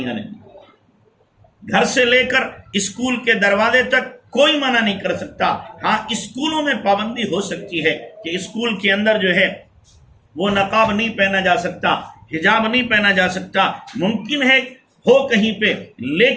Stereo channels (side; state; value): both; identical; correlation 1.00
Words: آنے، گھر سے لے کر اسکول کے دروازے تک کوئی منع نہیں کر سکتا۔ ہاں، اسکولوں میں پابندی ہو سکتی ہے کہ اسکول کے اندر جو ہے وہ نقاب نہیں پہنا جا سکتا، حجاب نہیں پہنا جا سکتا، ممکن ہے ہو کہیں پہ،